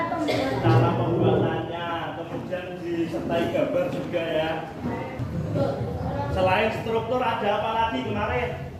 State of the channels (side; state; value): both; identical; correlation 1.00